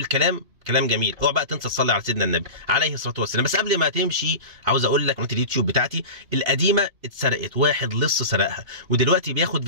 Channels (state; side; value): late; left; 2.8 ms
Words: كلام جميل، اوعى بقى تنسى تصلي على سيدنا النبي عليه الصلاه والسلام. بس قبل ما تمشي عاوز اقول لك قناه اليوتيوب بتاعتي القديمه اتسرقت، واحد لص سرقها، ودلوقتي بياخد